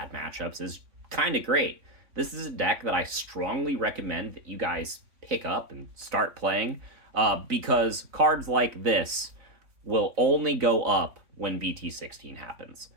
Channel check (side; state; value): left; late; 3.5 ms